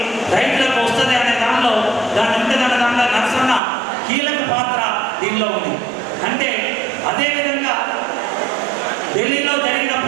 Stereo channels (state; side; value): drops out; left; at 3.6 s